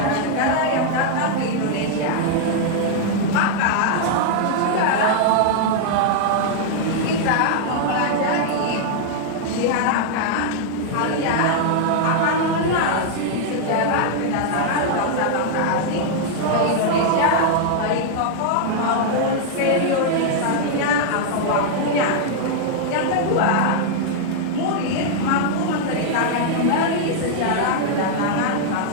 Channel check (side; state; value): both; different; correlation -0.01